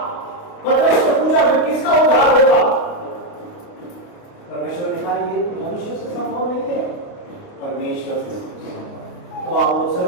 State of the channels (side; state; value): right; late; 28 ms